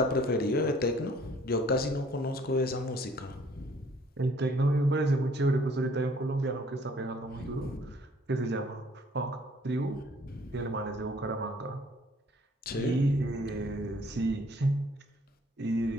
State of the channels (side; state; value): both; normal; correlation 0.59